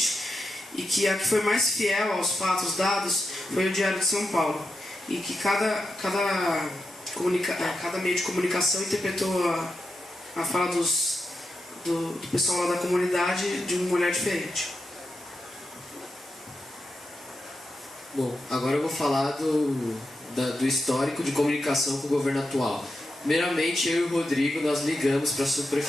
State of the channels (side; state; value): both; normal; correlation 0.88